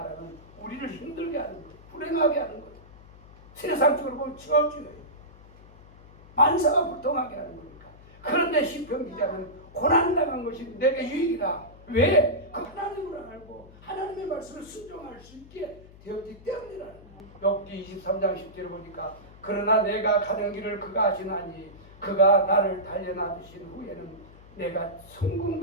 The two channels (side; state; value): left; noise; hum, 21 dB below the sound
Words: 우리를 힘들게 하는 거예요. 불행하게 하는 거예요. 세상적으로 보면 저주예요. 만사가 불통하게 하는 거니까. 그런데 시편 기자는 고난당한 것이 내게 유익이다. 왜? 그 하나님을 알고 하나님의 말씀을 순종할 수 있게 되었기 때문이라는 거예요. 욥기 23장 10절을 보니까 그러나 내가 가는 길을 그가 아시나니 그가 나를 단련하신 후에는 내가